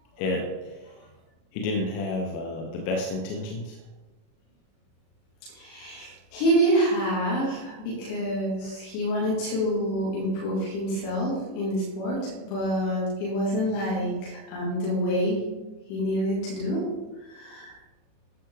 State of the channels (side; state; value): right; late; 36 ms